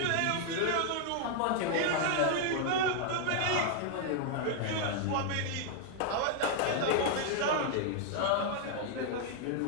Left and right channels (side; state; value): both; different; correlation 0.00